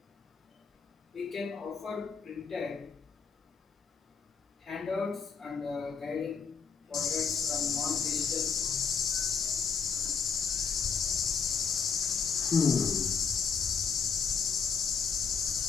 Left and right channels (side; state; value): right; quieter; 6.0 dB